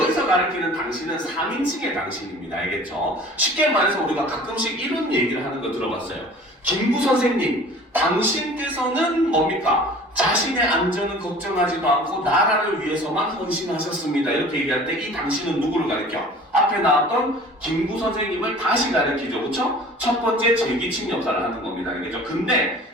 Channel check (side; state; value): both; normal; correlation 0.45